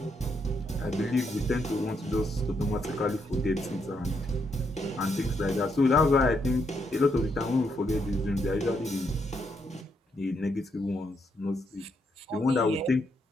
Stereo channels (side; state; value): both; normal; correlation 0.78